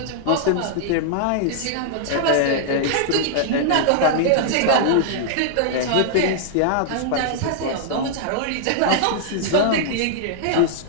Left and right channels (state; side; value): different; both; correlation -0.01